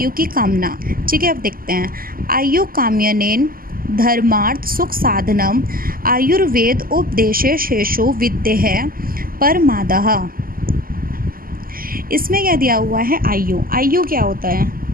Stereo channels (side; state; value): left; late; 0.42 ms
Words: की कामना। ठीक है, अब देखते हैं। आयु काम्यनेन धर्मार्थ सुख साधनम आयुर्वेद उपदेशे शेषो विद्येः परमादः। इसमें क्या दिया हुआ है? आयु। आयु क्या होता है